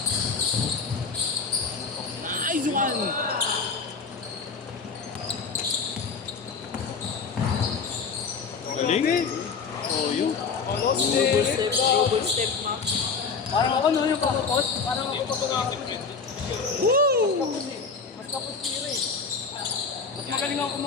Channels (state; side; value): quieter; right; 5.1 dB